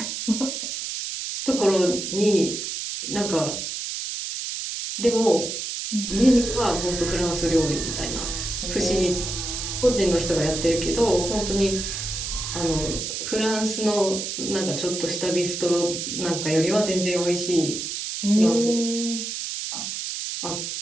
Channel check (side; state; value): right; noise; hiss, 5 dB below the sound